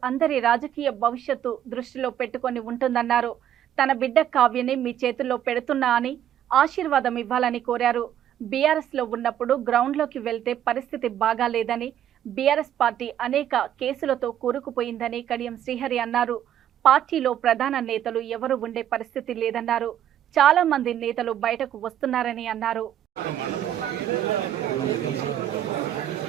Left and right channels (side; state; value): left; quieter; 10.7 dB